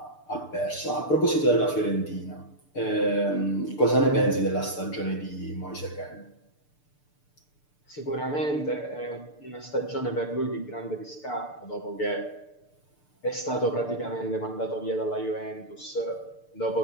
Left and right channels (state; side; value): late; right; 6.8 ms